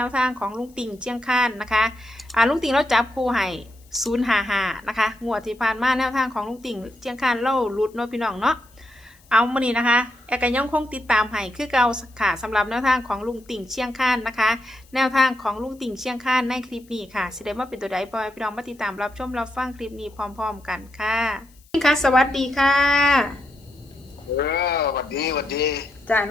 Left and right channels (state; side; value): noise; left; hiss, 30 dB below the sound